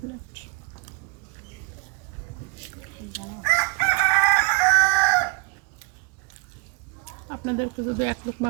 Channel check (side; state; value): left; quieter; 29.1 dB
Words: আপনাদেরকে যদি 1